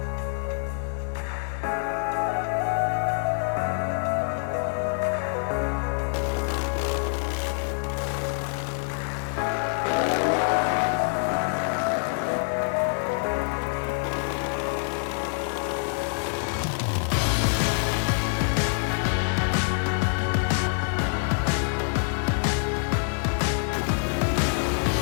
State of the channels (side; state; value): right; silent; 61 dB below the other